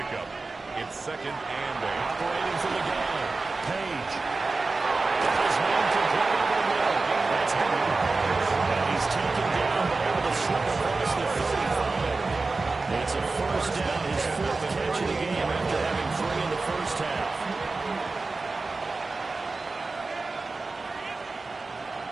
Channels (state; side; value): quieter; left; 3.7 dB